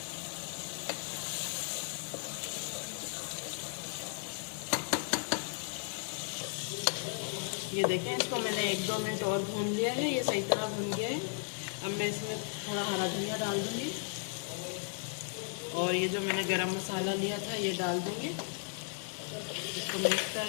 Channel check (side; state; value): right; silent; 54 dB below the other